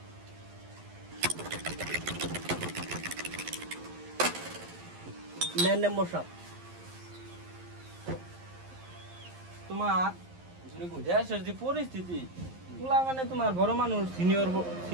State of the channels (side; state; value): left; late; 11 ms